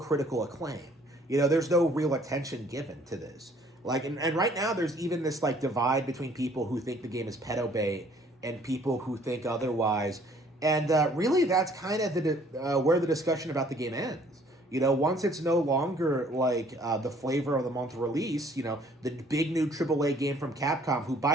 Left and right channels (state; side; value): normal; both; correlation 0.59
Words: acclaim. You know, there's no real attention given to this. Like, and right now there's even this like divide between people who think the game is pedo bait and people who think otherwise. And really, that's kind of where the discussion about the game ends. You know, once it's no longer like the flavor of the month release, you know, the big new AAA game from Capcom, who,